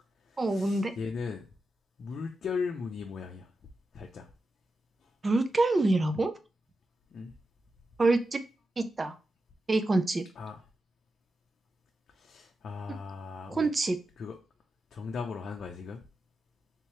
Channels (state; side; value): normal; both; correlation 0.90